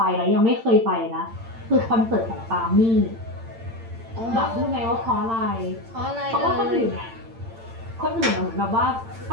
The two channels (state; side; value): late; left; 8.8 ms